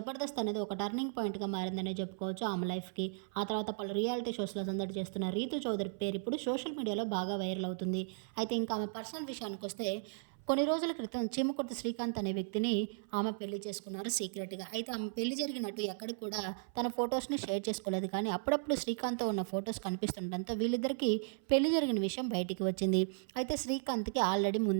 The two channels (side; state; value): left; silent; 54 dB below the other